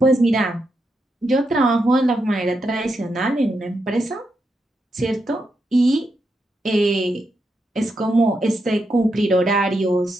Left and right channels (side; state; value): both; normal; correlation 0.84